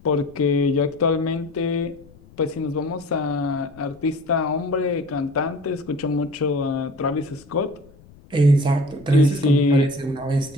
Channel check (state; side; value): noise; left; rumble, 25 dB below the sound